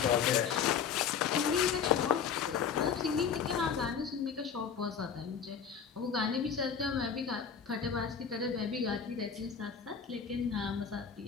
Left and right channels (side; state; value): right; quieter; 7.0 dB